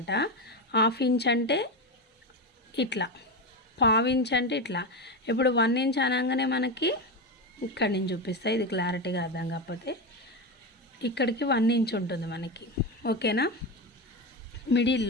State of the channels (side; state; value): both; normal; correlation 0.16